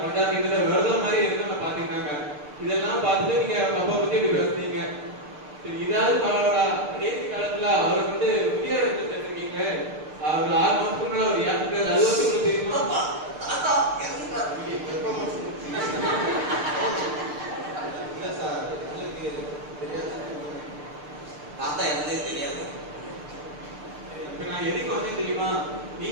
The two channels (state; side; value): late; left; 6.7 ms